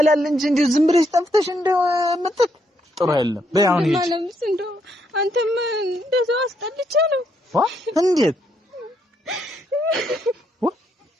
እንጂ እንደው ዝም ብለሽ ጠፍተሽ እንደው መጥተሽ ጥሩ አይደለም። በይ አሁን ሂጂ። ማለምስ እንደው አንተም እንደዛው አስጠልቼ ነው። እንዴት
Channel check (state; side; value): normal; both; correlation 0.75